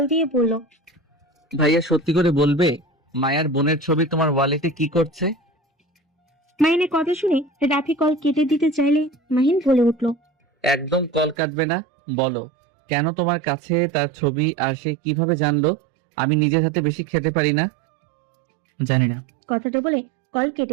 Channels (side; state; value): left; drops out; at 11.4 s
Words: দিয়ে বলল, ভাইয়া সত্যি করে বলবে, মায়ার বোনের ছবি তোমার ওয়ালেটে কি করছে? মাহিনের কথা শুনে রাফি কল কেটে দিতে চাইলে মাহিন বলে উঠল, একদম কল কাটবে না। বলো, কেন তোমার কাছে তার ছবি আর সে কিভাবে জানলো আমি নিজের হাতে বেশি খেতে পারি না? জানি না। কথাটা বলে কল